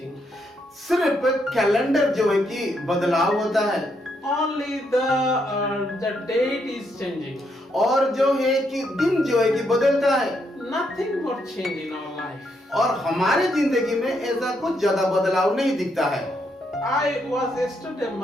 सिर्फ कैलेंडर जो है कि बदलाव होता है Only the date is changing. और जो है कि दिन जो है कि बदलता है Nothing more change in our life. और हमारे जिंदगी में ऐसा कुछ ज्यादा बदलाव नहीं दिखता है। I was yesterday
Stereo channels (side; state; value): both; normal; correlation 0.77